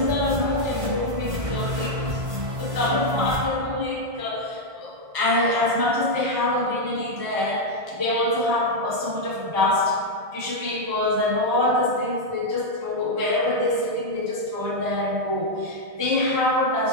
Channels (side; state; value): left; late; 1.6 ms